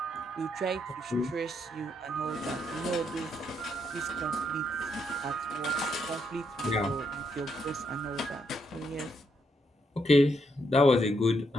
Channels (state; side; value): normal; both; correlation 0.77